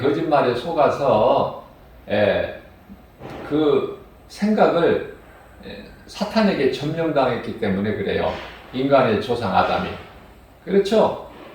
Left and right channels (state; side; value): identical; both; correlation 1.00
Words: 속아서 그 생각을 사탄에게 점령당했기 때문에 그래요. 인간의 조상 아담이. 그렇죠?